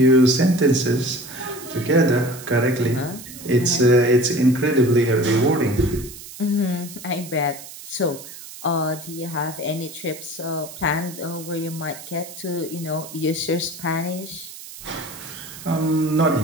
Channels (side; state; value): right; noise; hiss, 14 dB below the sound